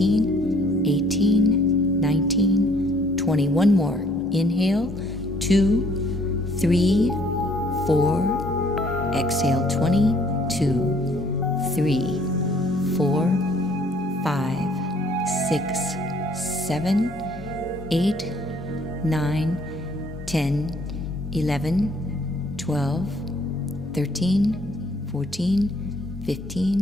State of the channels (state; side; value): normal; both; correlation 0.61